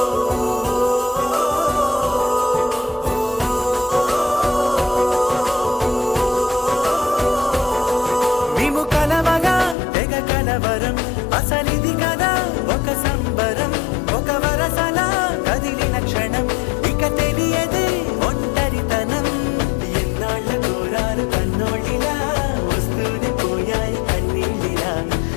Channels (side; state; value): right; drops out; at 9.8 s